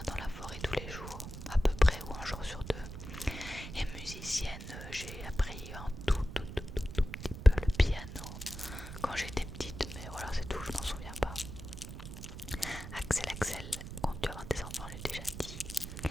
dans la forêt tous les jours, à peu près, ou un jour sur 2. Et musicienne, j'ai appris un tout petit peu le piano quand j'étais petite, mais voilà, c'est tout, je m'en souviens pas. Axel, quand tu auras des enfants, j'ai déjà dit.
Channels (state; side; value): noise; right; rumble, 10 dB below the sound